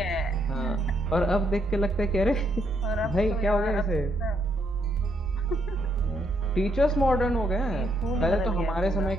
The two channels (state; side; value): normal; both; correlation 0.74